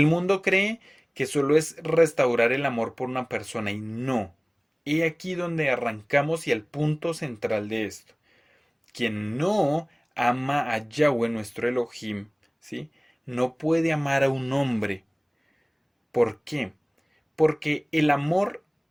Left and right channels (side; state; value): both; identical; correlation 1.00